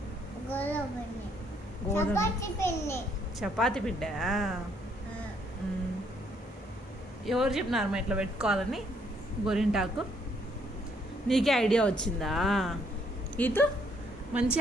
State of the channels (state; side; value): normal; both; correlation 0.69